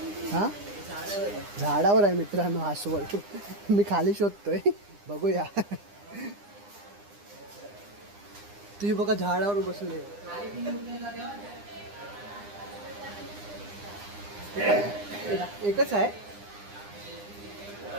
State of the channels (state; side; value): late; left; 9.9 ms